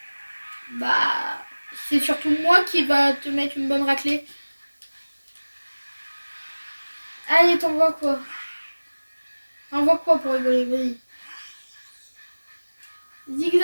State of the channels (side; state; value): both; inverted; correlation -1.00